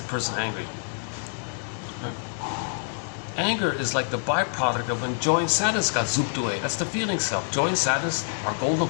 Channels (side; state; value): right; silent; digital silence